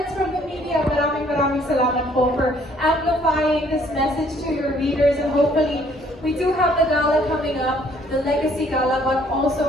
from the media, maraming salamat po for amplifying this message to your readers, and hopefully we do have the gala coming up, the Legacy Gala, but also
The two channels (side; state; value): both; normal; correlation 0.62